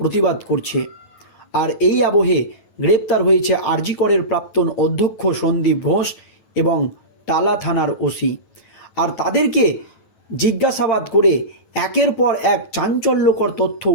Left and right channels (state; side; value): late; right; 9.2 ms